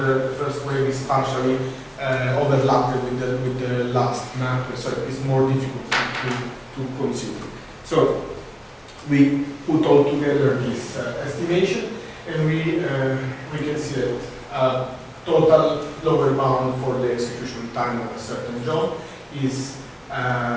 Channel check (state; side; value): identical; both; correlation 1.00